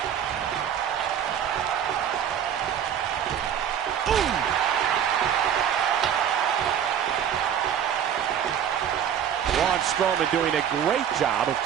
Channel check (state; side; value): quieter; left; 9.1 dB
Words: Braun Strowman doing a great job of